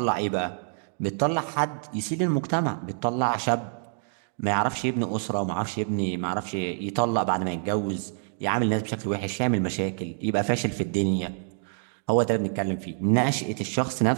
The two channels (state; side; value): silent; left; 60 dB below the other